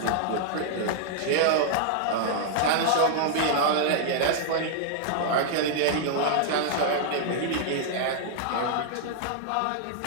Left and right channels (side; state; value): both; different; correlation -0.01